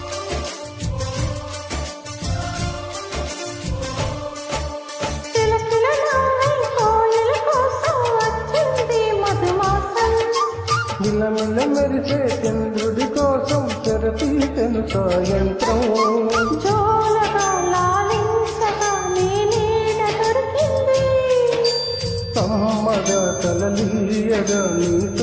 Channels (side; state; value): both; identical; correlation 1.00